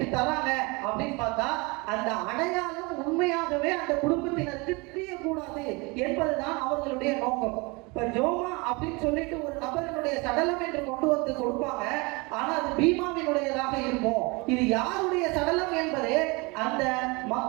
தராங்க அப்படின்னு பார்த்தா அந்த அடையாளம் உண்மையாகவே அந்த குடும்பத்தினருக்கு தெரியக்கூடாது என்பதுதான் அவர்களுடைய நோக்கம். இப்ப ஜோமா அப்படின்னு சொல்லிட்டு ஒரு நபரினுடைய சடலம் என்று கொண்டு வந்து கொடுப்பாங்க, ஆனா அது பீமாவினுடையதாக இருக்கும். இது யாருடைய சடலம் என்பதே அந்த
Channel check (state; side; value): quieter; left; 27.2 dB